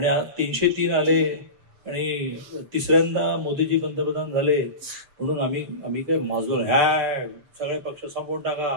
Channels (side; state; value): left; late; 6.8 ms